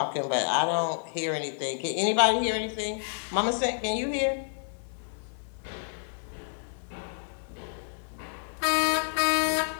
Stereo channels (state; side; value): silent; right; 58 dB below the other